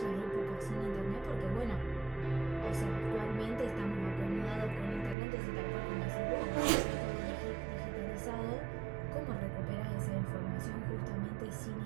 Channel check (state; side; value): drops out; left; at 5.2 s